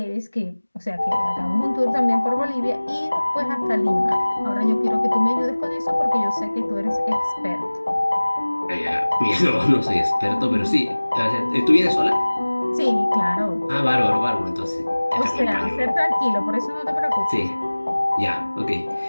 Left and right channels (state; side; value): inverted; both; correlation -1.00